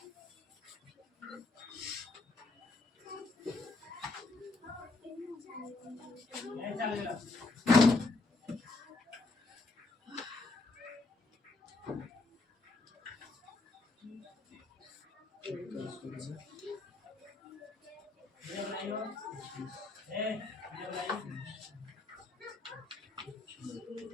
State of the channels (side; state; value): right; quieter; 3.3 dB